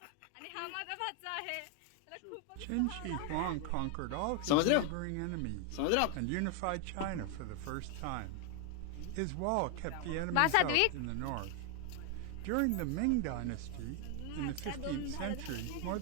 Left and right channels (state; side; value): different; both; correlation 0.00